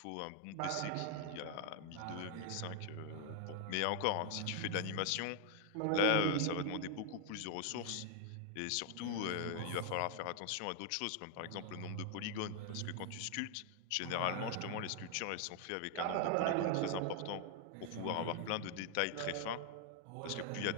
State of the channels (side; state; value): both; different; correlation 0.00